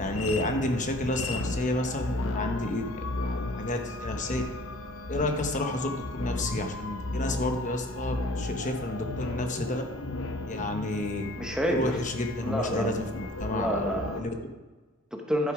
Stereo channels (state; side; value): normal; both; correlation 0.52